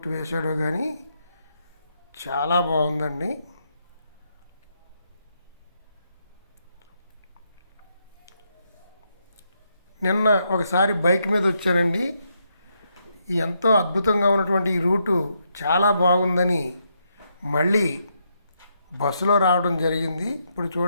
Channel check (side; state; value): both; inverted; correlation -0.79